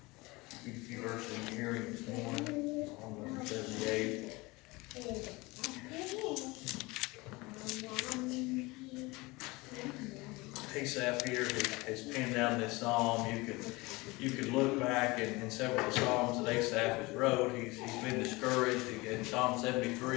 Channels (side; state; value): right; quieter; 23.2 dB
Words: few verses in hearing this morning. Psalm number 78. Asaph here has penned down this psalm. You could look back in several of the psalms that Asaph has wrote. He's been discouraged. In Psalm